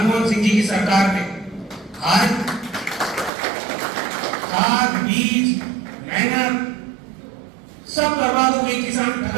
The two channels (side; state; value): left; drops out; at 3.3 s